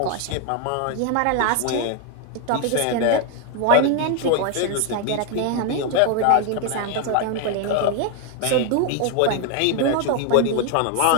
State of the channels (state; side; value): different; both; correlation 0.01